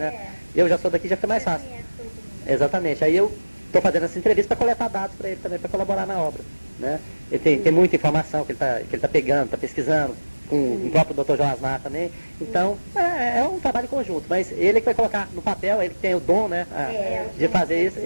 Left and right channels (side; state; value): both; inverted; correlation -1.00